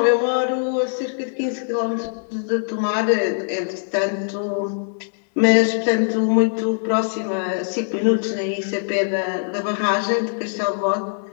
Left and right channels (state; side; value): silent; right; 64 dB below the other